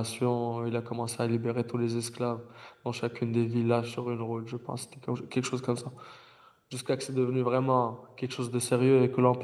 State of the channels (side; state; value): both; identical; correlation 1.00